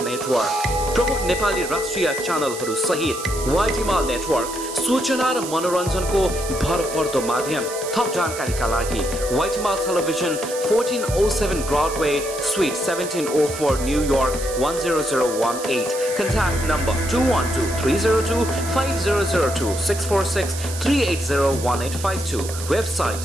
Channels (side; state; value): right; noise; hiss, 10 dB below the sound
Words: नेटवर्क प्रमुख नेपाली राष्ट्रिय च्यानलहरू सहित व्हाइट हिमाल नेटवर्क सूचना र मनोरञ्जनको भरपर्दो माध्यम थप जानकारीका लागि व्हाइट हिमाल television 1407 Broadway Suite 1704 New York 10018 contact number 212-302-5002-646-380-1852